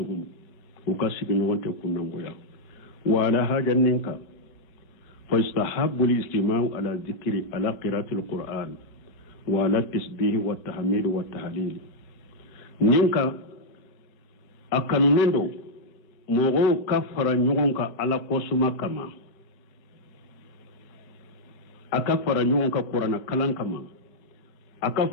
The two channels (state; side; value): late; right; 4.7 ms